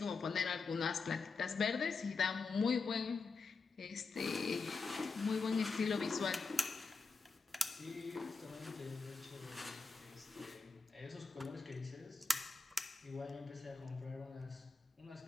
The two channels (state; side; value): quieter; right; 4.3 dB